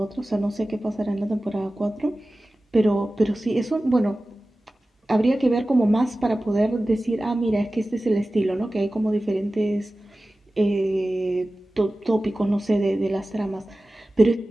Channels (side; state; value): both; normal; correlation 0.96